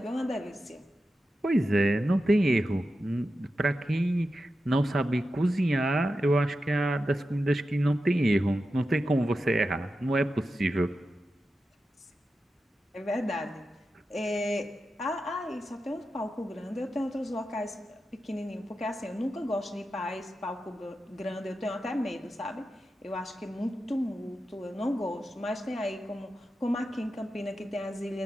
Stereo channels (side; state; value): both; normal; correlation 0.91